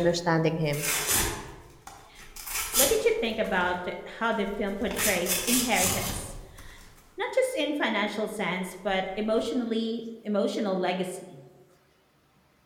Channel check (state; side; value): identical; both; correlation 1.00